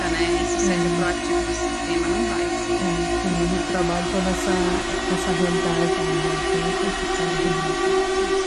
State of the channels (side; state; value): both; identical; correlation 1.00